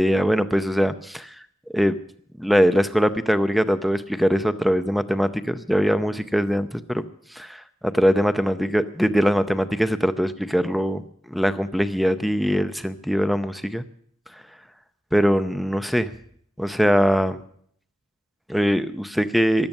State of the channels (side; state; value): both; normal; correlation 0.96